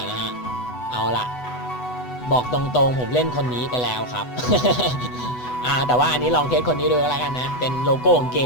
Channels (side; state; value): right; late; 8.1 ms